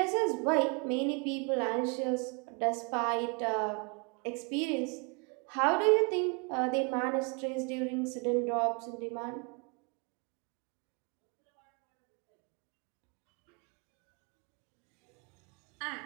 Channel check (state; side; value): quieter; left; 33.6 dB